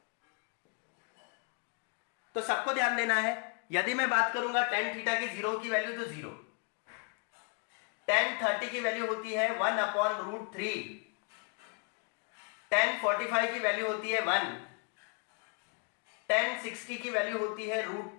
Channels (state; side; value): quieter; right; 36.6 dB